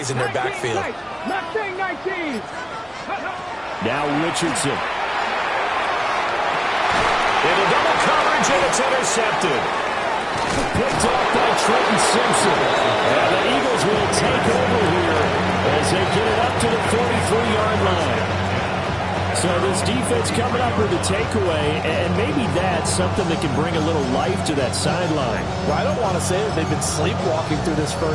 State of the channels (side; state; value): both; identical; correlation 1.00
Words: in their backfield. Now Richardson. Into double coverage, and it's intercepted. Picked off by Trenton Simpson. And the Eagles will take over here as they get it up to the 43-yard line. So this defense coming up with a takeaway, and maybe that's something that can bring a little life to that sideline. Well, I don't want to say that they've been sleepwalking through this